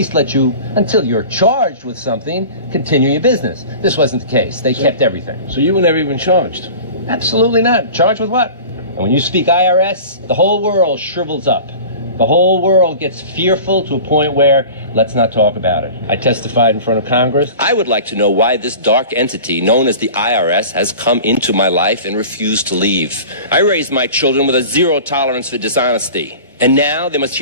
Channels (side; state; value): both; inverted; correlation -0.38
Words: let you, until you're charged with something, continue your business. This wasn't the case. They kept everything. So you were never even charged? Absolutely not. Charged with what? And when you speak IRS, the whole world shrivels up. The whole world gets fearful to a point where, let's not talk about it. I testified in front of Congress. I would like to know why this dark entity known as the IRS has come into my life and refused to leave. I raised my children with a zero tolerance for dishonesty. And now they must